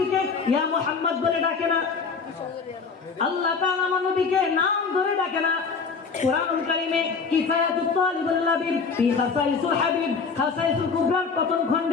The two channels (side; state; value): right; quieter; 5.2 dB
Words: ইয়া মুহাম্মদ বলে ডাকে না। আল্লাহ তাআলা আমার নবীকে নাম ধরে ডাকে না। কুরআনুল কারীমে কিফায়াতুত তালিবুল লাবিব ফি খাসাইসুল হাবিব, খাসাইসুল কুবরার প্রথম